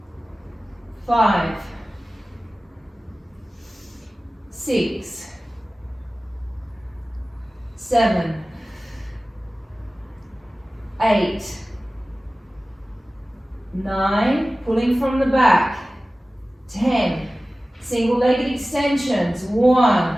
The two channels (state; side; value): normal; both; correlation 0.96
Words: 5, 6, 7, 8, 9, pulling from the back, 10, single-legged extensions, 1,